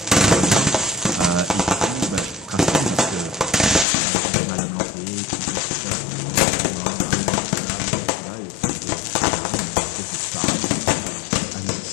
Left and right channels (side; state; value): right; drops out; at 3.9 s